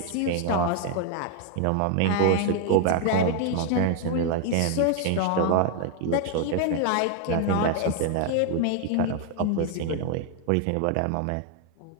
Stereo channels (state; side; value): different; both; correlation 0.00